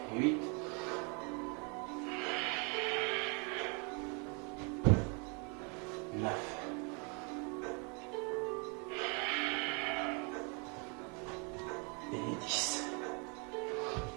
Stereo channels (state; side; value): quieter; left; 34.5 dB